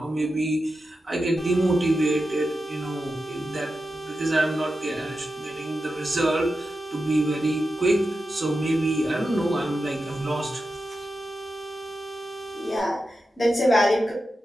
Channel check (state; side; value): normal; both; correlation 0.90